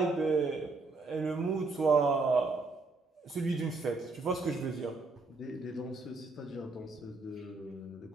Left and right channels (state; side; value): quieter; left; 3.7 dB